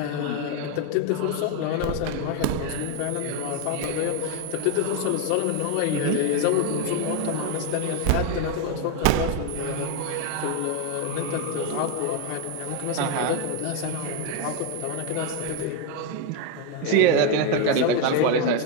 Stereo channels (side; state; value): both; different; correlation 0.01